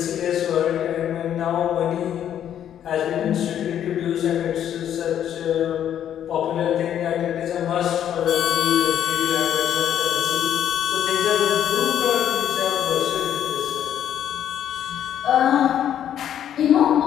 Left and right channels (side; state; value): right; quieter; 10.1 dB